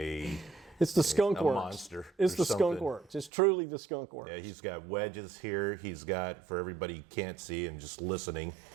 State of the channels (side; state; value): left; drops out; at 3.3 s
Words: the skunk works. Monster. It's the skunk works. It's truly the skunk works. Yeah, he's got wedges here. He's got, for everybody who can't see and just listening,